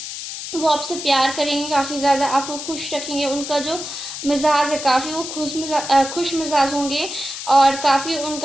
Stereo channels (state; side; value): noise; left; hiss, 8 dB below the sound